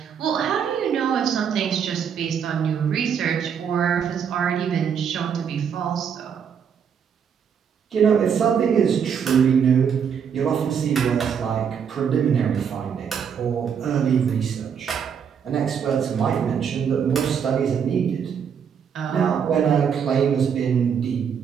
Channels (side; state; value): left; quieter; 7.4 dB